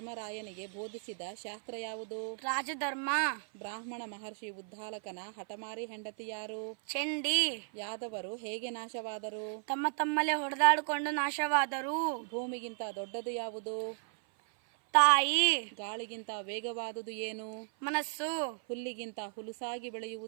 ಬೋಧಿಸಿದ ಶಾಸ್ತ್ರ ಯಾವುದು? ರಾಜಧರ್ಮ. ಬ್ರಾಹ್ಮಣ ಮಹರ್ಷಿ ಉದ್ದಾಲಕನ ಹಠಮಾರಿ ಹೆಂಡತಿ ಯಾರು? ಚಂಡಿ. ಯಾದವರು ಹೇಗೆ ನಾಶವಾದರು? ತಮ್ಮ ತಮ್ಮಲ್ಲೇ ಹೊಡೆದಾಡಿಕೊಂಡು ನಾಶವಾದರು. ಭೂಮಿಗಿಂತ ದೊಡ್ಡದು ಯಾವುದು? ತಾಯಿ. ಗಾಳಿಗಿಂತ ವೇಗವಾದುದು ಏನು? ಮನಸ್ಸು. ಹುಲ್ಲಿಗಿಂತ ಹುಲುಸಾಗಿ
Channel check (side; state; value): left; silent; 54 dB below the other